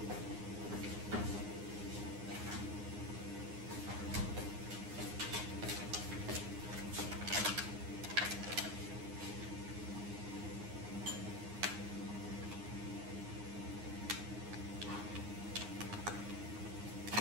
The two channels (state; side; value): late; left; 9.7 ms